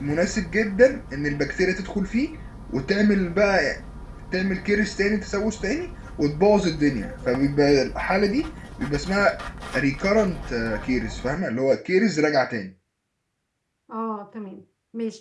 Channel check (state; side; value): identical; both; correlation 1.00